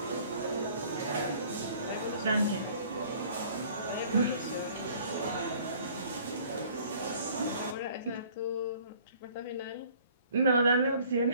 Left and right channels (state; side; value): inverted; both; correlation -0.54